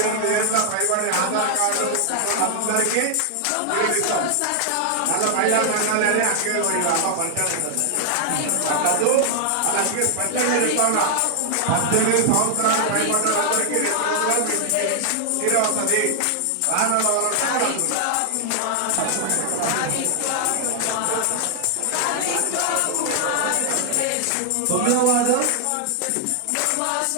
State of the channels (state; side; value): different; both; correlation 0.00